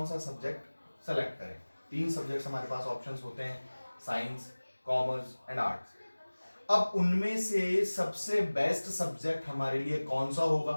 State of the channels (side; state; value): both; inverted; correlation -1.00